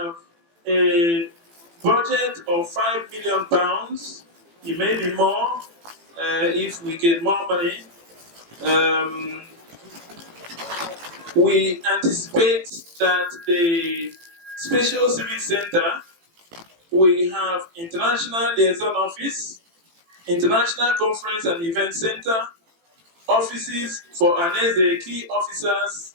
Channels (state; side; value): late; left; 18 ms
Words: a budget of £5 million. It may be more if we get more money. We anticipate that the Special Civic Center we have International Liaison Office, International Conference and Event Center, offices for Ohaneze key officers.